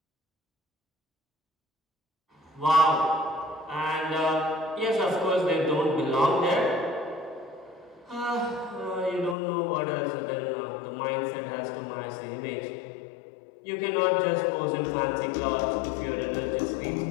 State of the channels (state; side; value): drops out; right; at 9.3 s